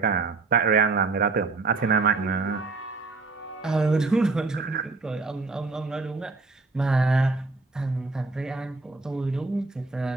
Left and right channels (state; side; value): quieter; left; 3.8 dB